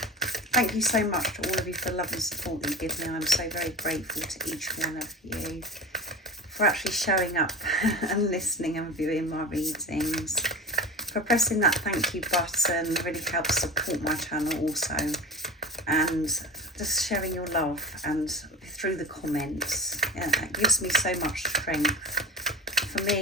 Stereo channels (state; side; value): normal; both; correlation 0.33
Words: Thank you so much to all of you for the love and support that you give me. I'm so very grateful to each one of you for actually showing up and listening and viewing my readings, for pressing that thank you button. It really helps support my channel also, and just sharing your love and through the comments. It gives me so much strength for